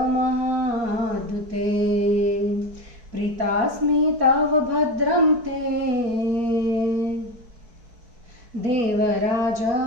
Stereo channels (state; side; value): late; left; 4.6 ms